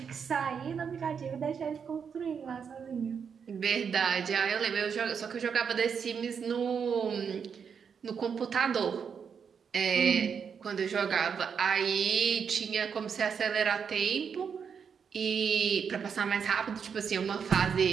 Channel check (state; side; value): quieter; left; 6.7 dB